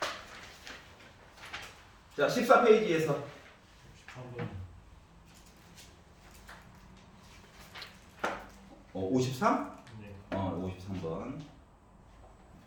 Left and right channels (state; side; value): identical; both; correlation 1.00